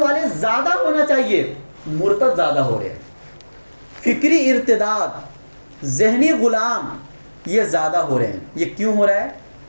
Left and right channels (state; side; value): inverted; both; correlation -1.00